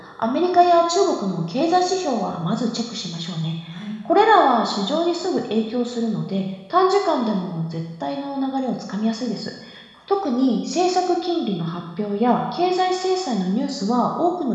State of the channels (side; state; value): both; identical; correlation 1.00